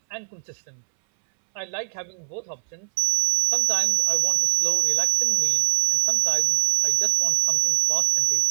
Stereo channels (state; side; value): silent; left; 64 dB below the other